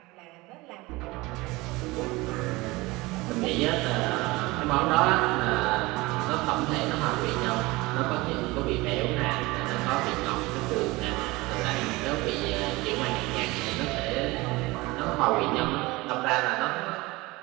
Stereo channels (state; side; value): quieter; left; 21.9 dB